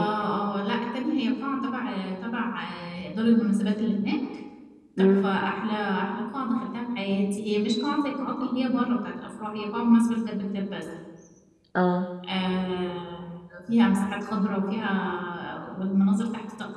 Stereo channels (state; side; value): identical; both; correlation 1.00